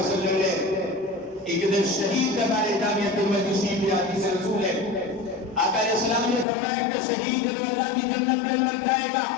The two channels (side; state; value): right; drops out; at 6.5 s